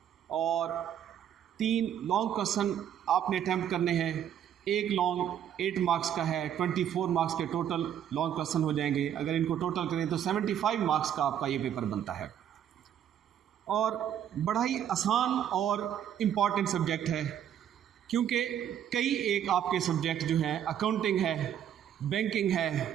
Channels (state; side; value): quieter; left; 9.8 dB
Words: और 3 लॉन्ग क्वेश्चन आपने अटैम्प्ट करने हैं। एक लॉन्ग 8 मार्क्स का है, 24 मार्क्स के टोटल लॉन्ग क्वेश्चन हो जाएंगे। अगर इनको टोटल करें तो 75 मार्क्स का आपका ये पेपर बनता है और बड़ा ही आसान और इम्पॉर्टेंट सब्जेक्ट है, क्योंकि कई एक आपके सब्जेक्ट जो हैं अकाउंटिंग है, बैंकिंग